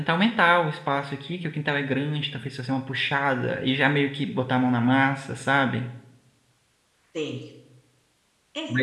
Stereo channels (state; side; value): identical; both; correlation 1.00